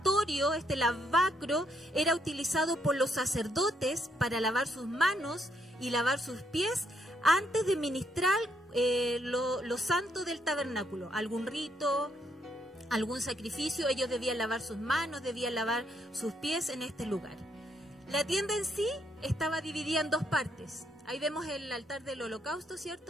este lavacro, era utilizado por los sacerdotes para lavar sus manos y lavar sus pies antes de ministrar lo santo del tabernáculo. Algún rito, algún sacrificio, ellos debían lavar sus manos, debían lavar sus pies en este lugar. La tienda en sí estaba dividida en dos partes. Ahí vemos el altar del holocausto,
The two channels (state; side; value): normal; both; correlation 0.74